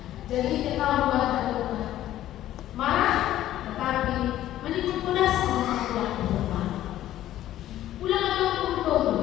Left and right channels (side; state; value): right; quieter; 13.2 dB